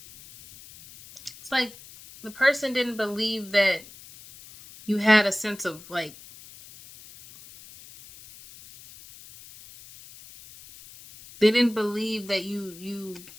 it's like the person didn't believe that you had a sense of like, they didn't believe that you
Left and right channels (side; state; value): left; noise; hiss, 19 dB below the sound